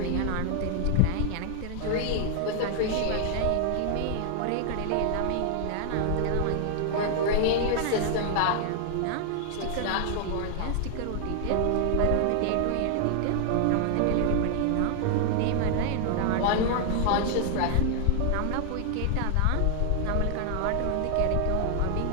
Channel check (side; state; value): both; different; correlation 0.00